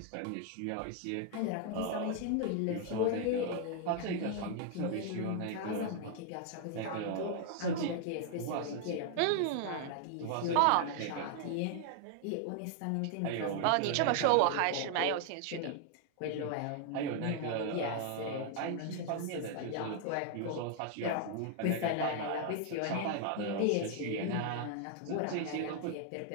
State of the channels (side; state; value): both; different; correlation 0.00